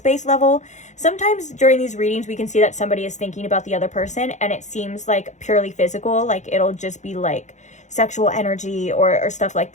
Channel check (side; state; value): right; late; 0.35 ms